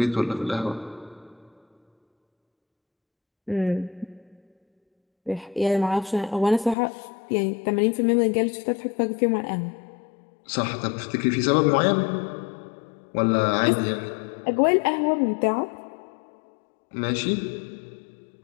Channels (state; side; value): drops out; right; at 6.8 s